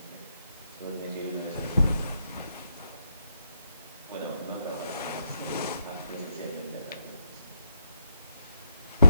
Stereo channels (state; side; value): inverted; both; correlation -0.83